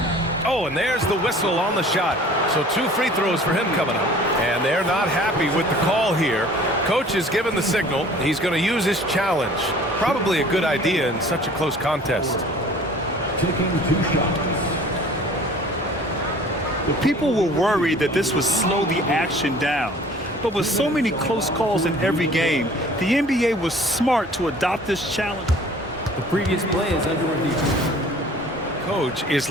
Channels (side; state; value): both; normal; correlation 0.49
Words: Oh, and there's the whistle on the shot. So 2 free throws for him coming up. And they're not happy with the call here. Coach is given the signal. He's going to use his challenge. Probably a good idea in such a close contest. Taking 2 shots. People were worried that this would slow the action down. But with so many close calls in every game, the NBA was smart to adopt this challenge. The previous play is under review. Coach is